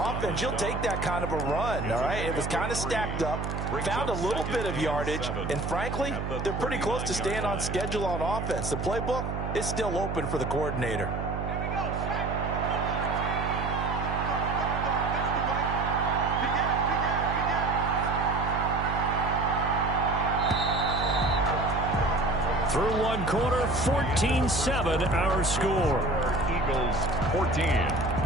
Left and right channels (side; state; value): right; noise; hum, 4 dB below the sound